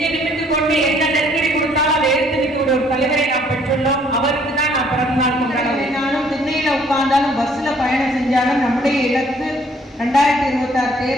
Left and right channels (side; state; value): both; normal; correlation 0.62